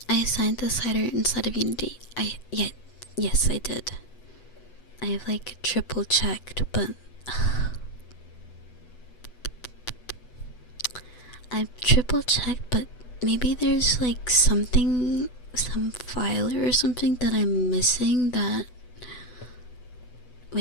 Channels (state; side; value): late; right; 8.1 ms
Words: I assigned the slider inside of Unity. Yes, I did. I have like triple checked, but I've triple checked, but maybe there's like something, some file or something that I'm missing that...